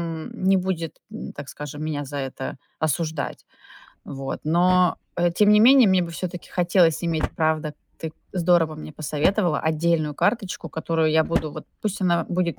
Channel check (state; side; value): identical; both; correlation 1.00